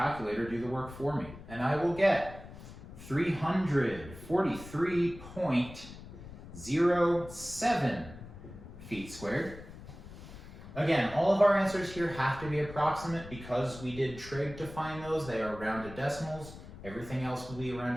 do the work for me. And I will get 343.07 feet squared. Again, all of our answers here have to be approximate because we did trig to find those. They are rounded decimals. Everything else will be a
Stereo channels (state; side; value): noise; left; rumble, 15 dB below the sound